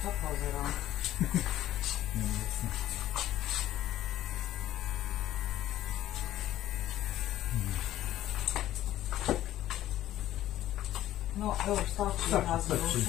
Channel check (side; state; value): right; quieter; 13.6 dB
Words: to pozerám. Neviem sa. No, jo, stačí, raz mi už